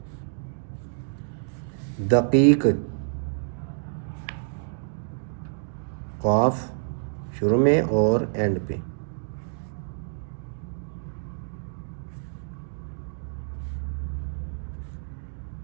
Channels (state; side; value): silent; left; digital silence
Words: दकीक, क़ाफ शुरू में और एंड पे।